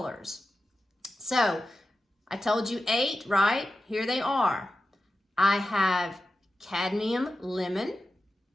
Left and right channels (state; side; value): normal; both; correlation 0.92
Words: So I told you 8, right? Here they are. I have cadmium lemon,